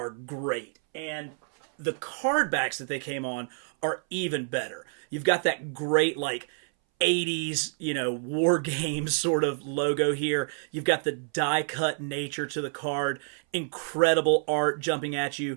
great, and the card backs that they came on are even better. You've got that great, like, 80s, war games sort of logo here. You've got the die-cut nature to the card, incredible art jumping at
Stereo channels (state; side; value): silent; left; 59 dB below the other